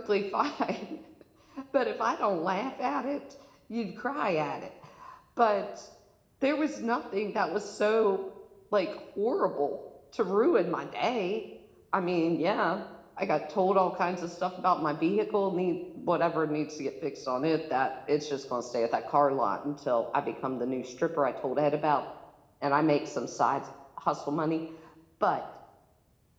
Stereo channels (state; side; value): identical; both; correlation 1.00